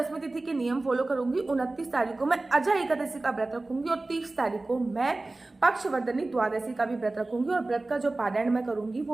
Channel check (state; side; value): quieter; left; 3.1 dB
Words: तिथि के नियम फॉलो करूंगी। 29 तारीख को मैं अजय एकादशी का व्रत रखूंगी और 30 तारीख को मैं पक्षवर्धनी द्वादशी का भी व्रत रखूंगी। और व्रत का जो पारायण मैं करूंगी